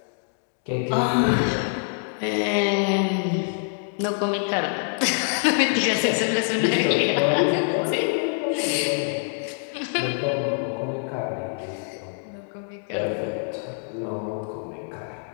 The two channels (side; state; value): right; silent; digital silence